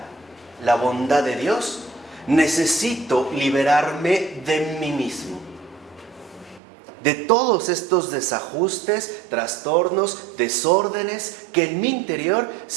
la bondad de Dios, necesito liberarme de mí mismo, de todos estos desajustes, trastornos, desórdenes que en mi interior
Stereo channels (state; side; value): drops out; left; at 6.6 s